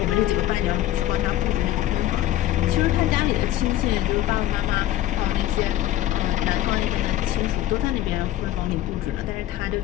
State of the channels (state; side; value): quieter; right; 13.6 dB